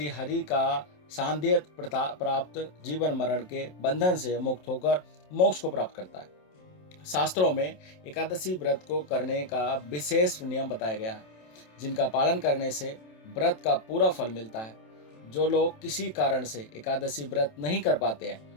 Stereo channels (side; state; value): right; late; 27 ms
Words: हरि का सान्निध्य प्राप्त जीवन मरण के बंधन से मुक्त होकर मोक्ष को प्राप्त करता है। शास्त्रों में एकादशी व्रत को करने का विशेष नियम बताया गया है, जिनका पालन करने से व्रत का पूरा फल मिलता है। जो लोग किसी कारण से एकादशी व्रत नहीं कर पाते